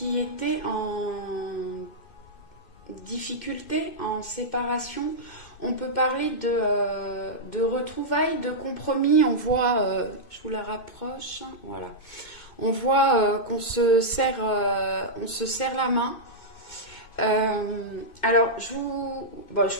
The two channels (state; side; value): late; right; 2.5 ms